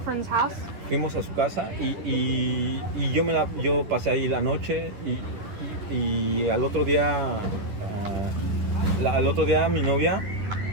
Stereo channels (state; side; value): late; left; 10 ms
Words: house. Fuimos a su casa y yo pasé ahí la noche y al otro día mi novia,